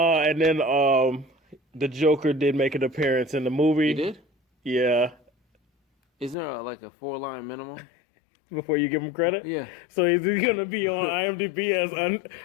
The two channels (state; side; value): drops out; right; at 6.4 s